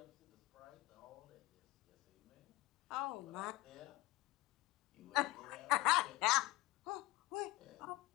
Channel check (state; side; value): quieter; right; 18.9 dB